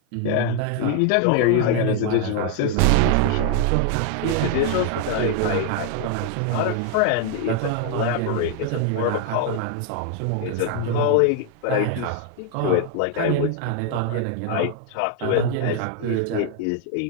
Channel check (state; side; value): different; both; correlation 0.00